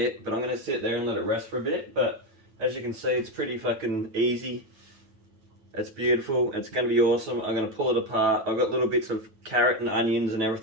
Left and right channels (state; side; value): late; left; 9.1 ms